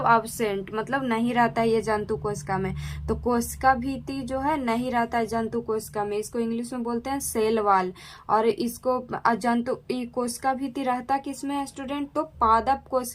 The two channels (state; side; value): identical; both; correlation 1.00